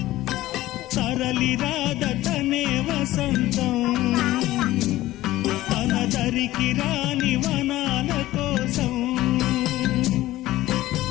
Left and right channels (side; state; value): right; quieter; 16.0 dB